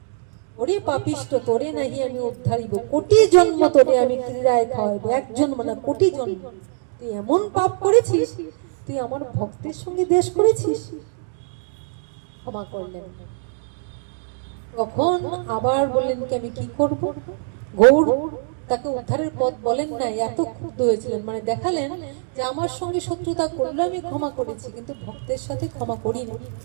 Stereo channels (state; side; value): silent; left; digital silence